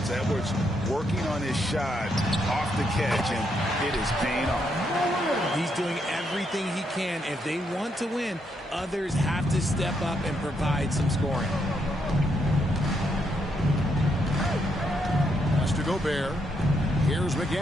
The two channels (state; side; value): normal; both; correlation 0.77